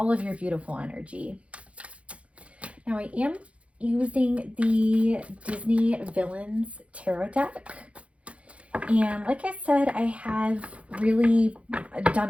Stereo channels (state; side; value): late; left; 0.063 ms